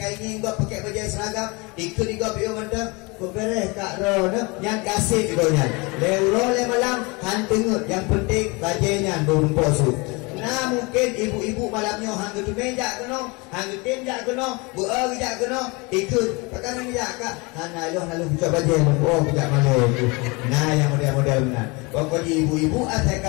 ini enggak pakai baju seragam, ikut juga bio mendem. Kau beres kak Ron, yang kasih ibunya. Leuro le malam hantengut, yang penting bajunya merumpok su. Nah mungkin ibu-ibu malamnya hang tu meja keno, hang tenjak keno, buah gejak keno, ikut pakai meja kak. Hana lo nalu buka baju, oh buka malu. Nah yang model-model benar. Pokoknya ibu-ibu asal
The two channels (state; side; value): quieter; right; 27.2 dB